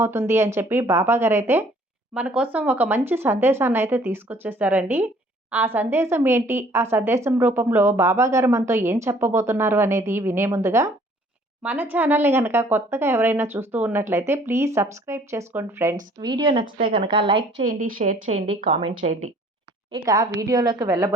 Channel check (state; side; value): normal; both; correlation 0.57